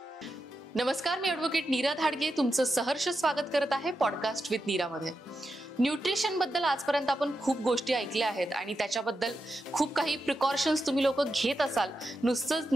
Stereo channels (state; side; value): normal; both; correlation 0.88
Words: नमस्कार, मी ॲडव्होकेट नीरा धाडगे तुमचं सहर्ष स्वागत करत आहे पॉडकास्ट विथ नीरामध्ये. न्यूट्रिशन बद्दल आजपर्यंत आपण खूप गोष्टी ऐकल्या आहेत आणि त्याच्याबद्दल खूप काही प्रिकॉशन्स तुम्ही लोक घेत असाल. नुसतंच